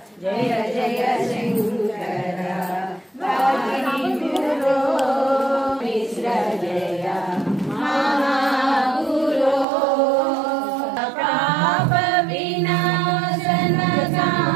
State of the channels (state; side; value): drops out; left; at 9.7 s